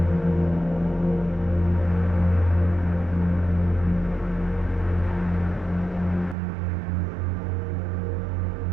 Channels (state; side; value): drops out; left; at 6.4 s